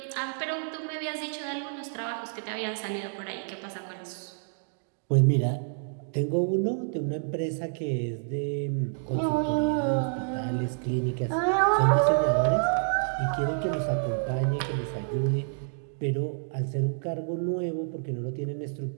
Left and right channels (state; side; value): silent; left; digital silence